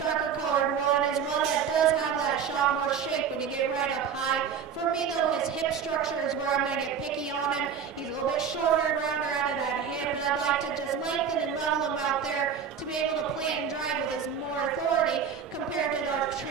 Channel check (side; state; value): left; quieter; 7.3 dB